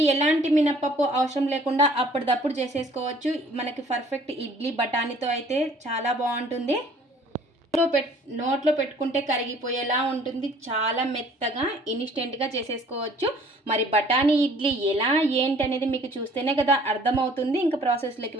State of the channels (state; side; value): normal; both; correlation 0.55